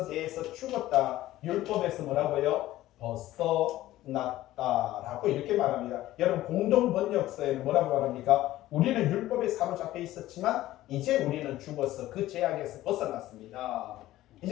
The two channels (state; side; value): quieter; right; 15.3 dB